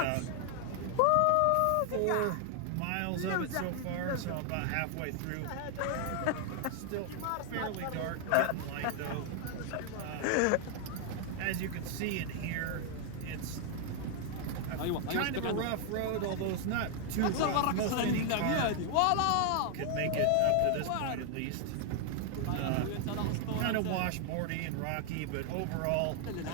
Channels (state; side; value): different; both; correlation 0.00